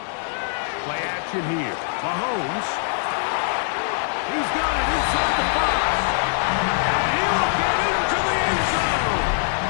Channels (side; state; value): right; silent; digital silence